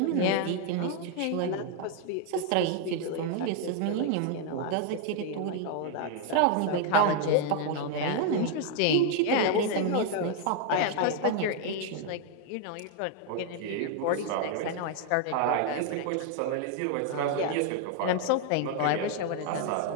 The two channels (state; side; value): different; both; correlation 0.00